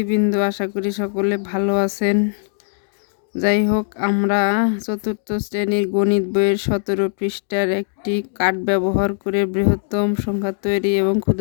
আশা করি সকলে ভালো আছেন। যাই হোক, আমরা চতুর্থ শ্রেণীর গণিত বইয়ের 17 পৃষ্ঠার একটি কার্ড ব্যবহার করে বৃহত্তম সংখ্যা তৈরি এবং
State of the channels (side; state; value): right; silent; digital silence